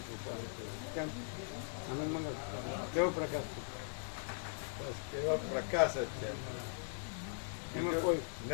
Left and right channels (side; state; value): right; silent; 51 dB below the other